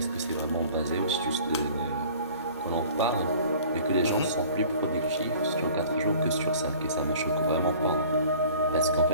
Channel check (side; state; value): both; inverted; correlation -0.48